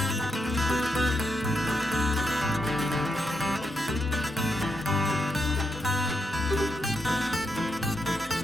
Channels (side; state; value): both; normal; correlation 0.83